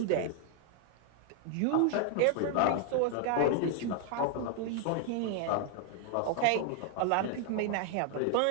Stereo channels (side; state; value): both; different; correlation 0.00